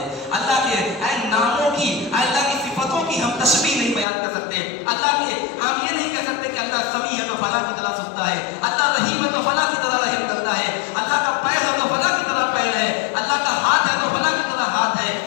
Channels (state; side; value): drops out; right; at 4.0 s